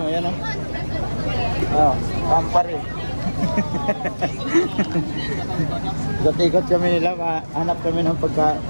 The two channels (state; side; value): inverted; both; correlation -1.00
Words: kumpare. Ikot-ikot kami nila, hanap kami ng